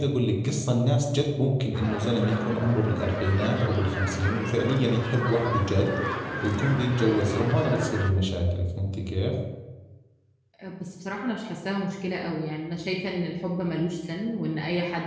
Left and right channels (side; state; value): both; identical; correlation 1.00